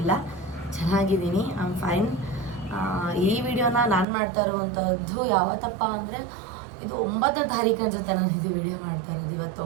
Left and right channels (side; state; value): left; drops out; at 4.0 s